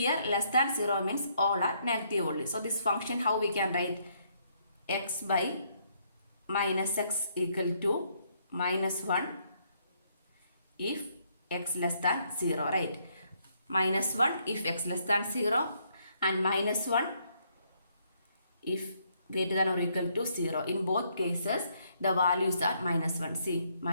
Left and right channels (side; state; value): both; inverted; correlation -0.71